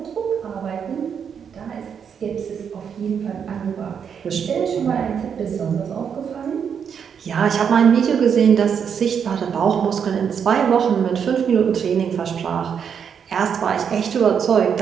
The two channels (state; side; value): quieter; left; 7.4 dB